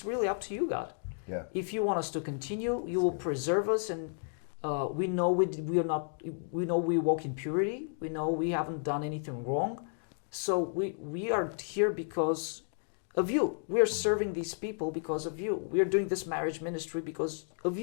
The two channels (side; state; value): right; silent; digital silence